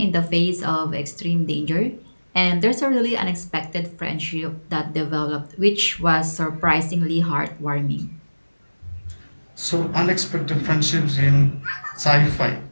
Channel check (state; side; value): inverted; both; correlation -1.00